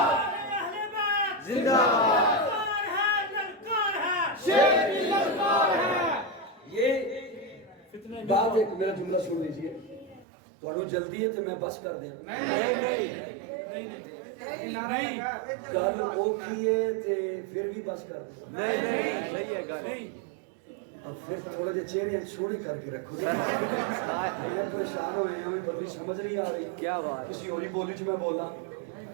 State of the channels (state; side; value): drops out; left; at 10.2 s